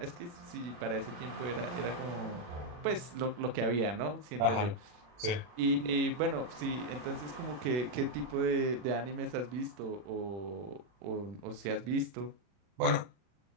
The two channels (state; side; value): late; left; 40 ms